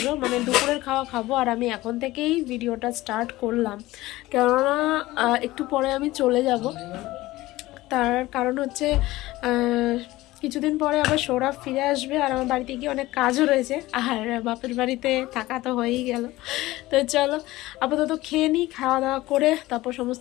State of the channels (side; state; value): right; quieter; 18.0 dB